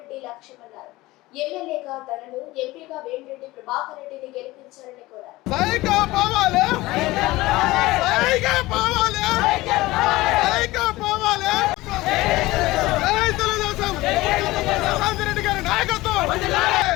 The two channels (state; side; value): quieter; right; 19.2 dB